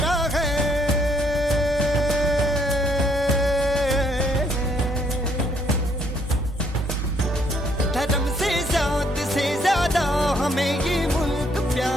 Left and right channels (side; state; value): both; normal; correlation 0.68